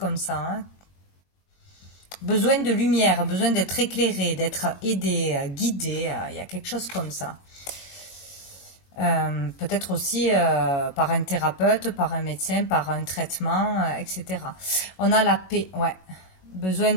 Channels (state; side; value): late; right; 22 ms